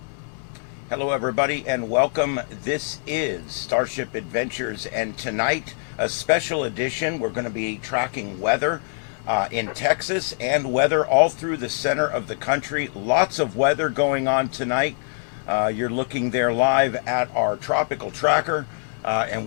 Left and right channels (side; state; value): right; silent; digital silence